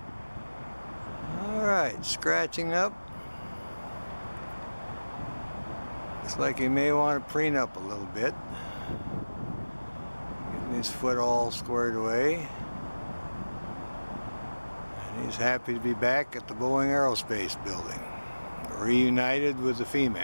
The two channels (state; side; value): inverted; both; correlation -1.00